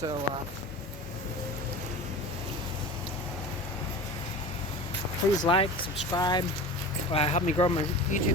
please like, subscribe, help me grow my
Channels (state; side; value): normal; both; correlation 0.34